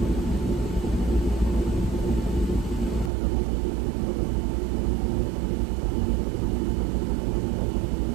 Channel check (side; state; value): left; drops out; at 3.1 s